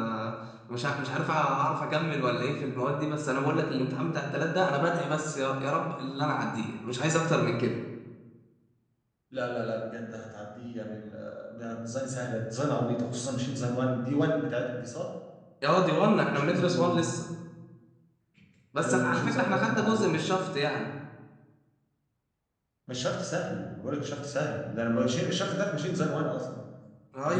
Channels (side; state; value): both; identical; correlation 1.00